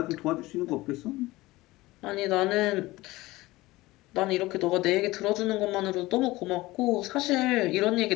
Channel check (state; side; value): quieter; right; 19.3 dB